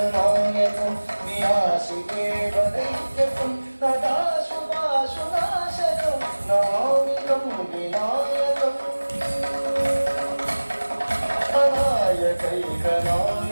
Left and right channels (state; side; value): inverted; both; correlation -1.00